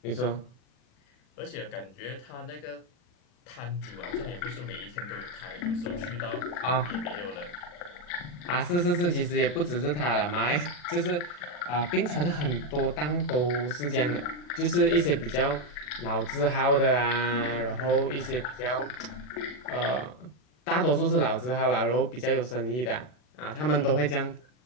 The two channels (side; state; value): right; late; 40 ms